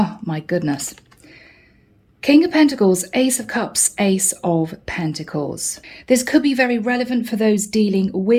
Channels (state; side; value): identical; both; correlation 1.00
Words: my goodness. King of Pentacles, Ace of Cups, Ace of Pentacles. This could be very relevant for those dealing